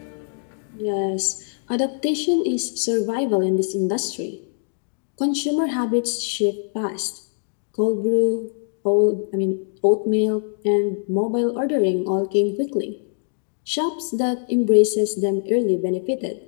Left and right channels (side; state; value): right; silent; 62 dB below the other